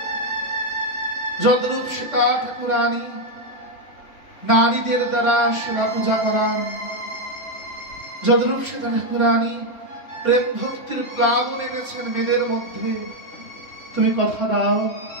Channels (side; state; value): right; late; 2.9 ms